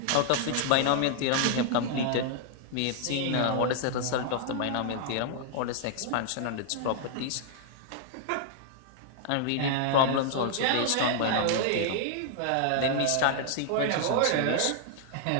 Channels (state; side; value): different; both; correlation -0.01